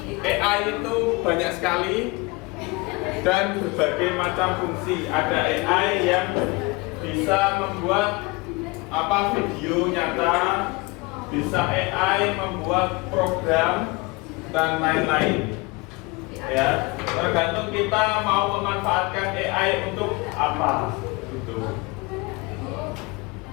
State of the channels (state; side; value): quieter; right; 24.9 dB